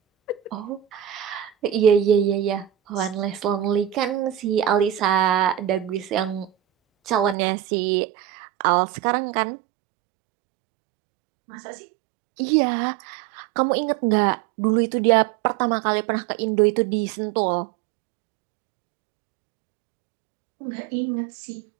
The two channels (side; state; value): left; drops out; at 7.4 s